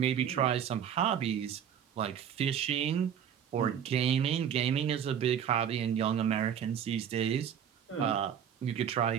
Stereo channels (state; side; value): quieter; left; 8.8 dB